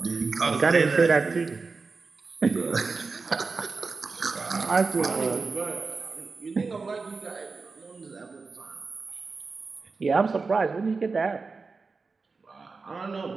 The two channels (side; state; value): left; quieter; 4.3 dB